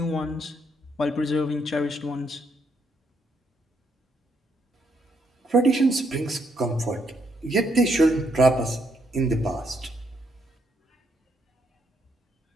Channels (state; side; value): normal; both; correlation 0.75